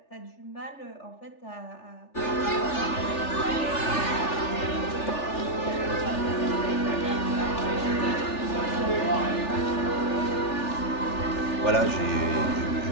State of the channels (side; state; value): right; late; 3.4 ms